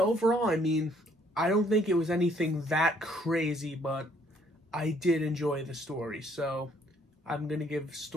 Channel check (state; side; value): normal; both; correlation 0.65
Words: overall, I mean, I don't think it was anything that crazy, but I did enjoy the story. So I'm gonna give